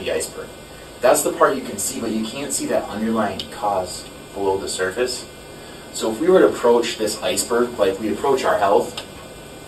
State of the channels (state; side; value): identical; both; correlation 1.00